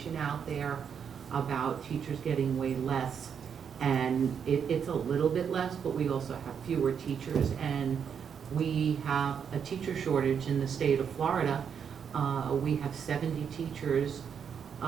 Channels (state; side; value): quieter; left; 7.3 dB